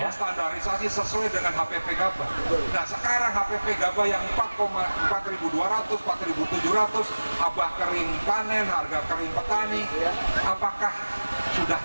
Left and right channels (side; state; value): both; inverted; correlation -1.00